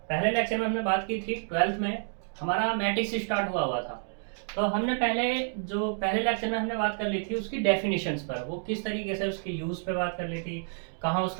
पहले लेक्चर में हमने बात की थी, ट्वेल्थ में हमारा मैट्रिक्स स्टार्ट हुआ हुआ था। तो हमने पहले लेक्चर में हमने बात कर ली थी उसकी डेफिनेशंस पर, वो किस तरीके से उसके यूज़ पे बात कर ली थी, कहाँ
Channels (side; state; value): left; silent; 58 dB below the other